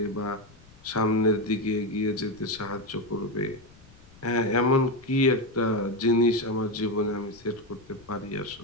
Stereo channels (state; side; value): noise; left; rumble, 25 dB below the sound